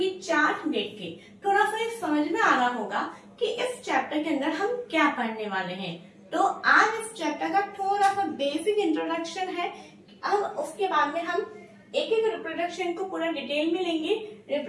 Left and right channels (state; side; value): identical; both; correlation 1.00